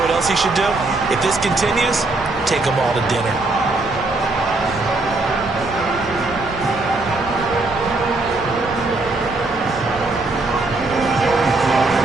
else he should do? If this continues, take them all to dinner.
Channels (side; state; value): left; quieter; 3.2 dB